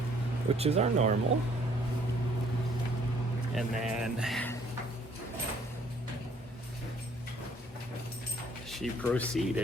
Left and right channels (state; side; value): normal; both; correlation 0.62